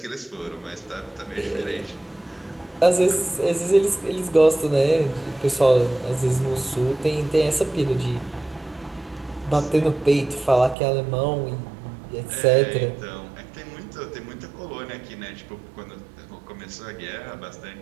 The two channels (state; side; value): drops out; left; at 10.8 s